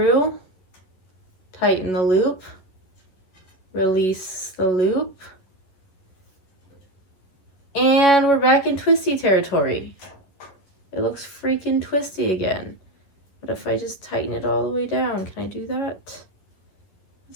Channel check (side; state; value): right; late; 11 ms